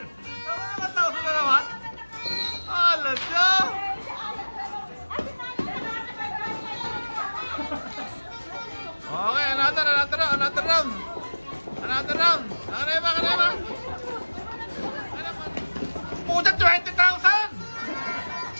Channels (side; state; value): both; inverted; correlation -1.00